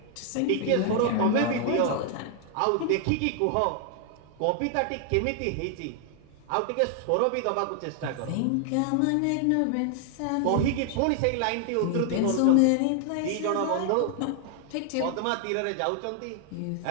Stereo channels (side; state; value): both; different; correlation 0.00